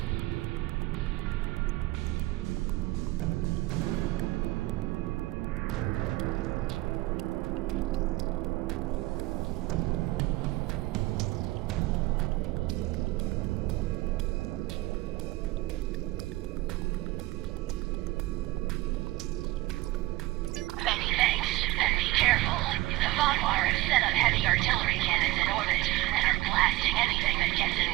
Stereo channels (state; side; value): quieter; left; 18.5 dB